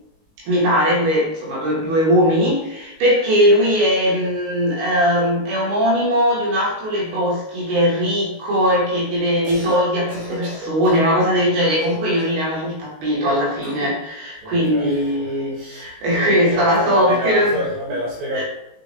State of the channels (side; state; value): left; late; 19 ms